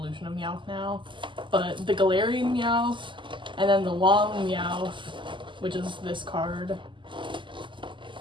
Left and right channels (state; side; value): late; left; 0.24 ms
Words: of Meowth now. But the Galarian Meowth, and then the long Meowth, which is this card.